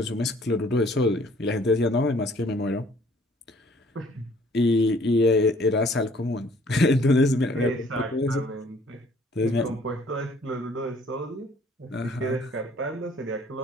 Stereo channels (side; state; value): both; normal; correlation 0.58